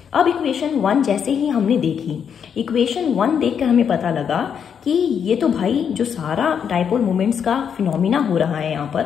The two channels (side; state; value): right; quieter; 7.6 dB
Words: अब इक्वेशन 1 जैसे ही हमने देखी, इक्वेशन 1 देखकर हमें पता लगा कि ये तो भाई जो सारा डाइपोल मोमेंट्स का फिनोमिना हो रहा है यहाँ